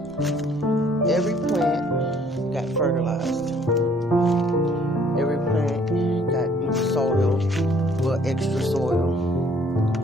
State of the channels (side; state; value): both; normal; correlation 0.61